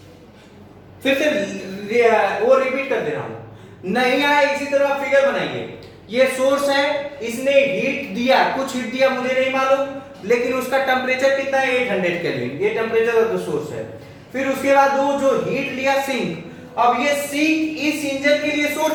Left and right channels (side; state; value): both; identical; correlation 1.00